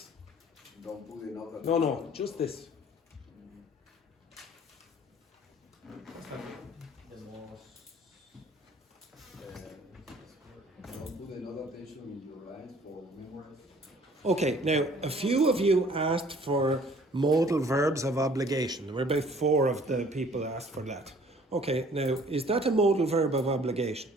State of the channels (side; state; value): both; normal; correlation 0.55